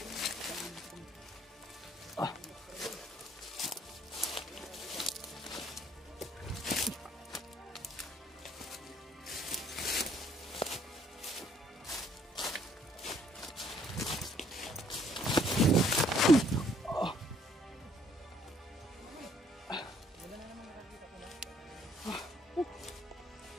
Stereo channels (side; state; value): both; normal; correlation 0.64